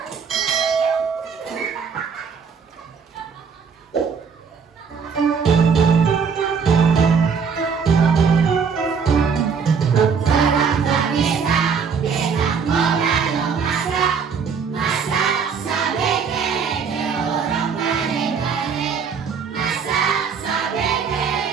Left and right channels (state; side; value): quieter; left; 6.1 dB